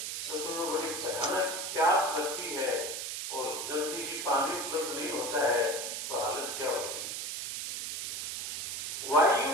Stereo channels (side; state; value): right; noise; hiss, 4 dB below the sound